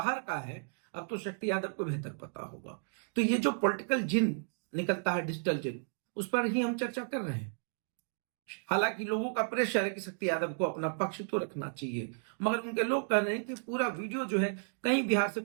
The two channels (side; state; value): left; silent; digital silence